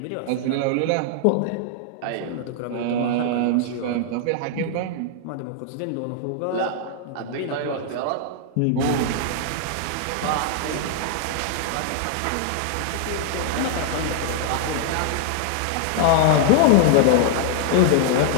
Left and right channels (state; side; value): different; both; correlation 0.00